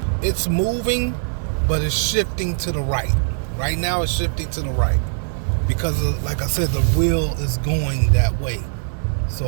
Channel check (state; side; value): silent; left; 60 dB below the other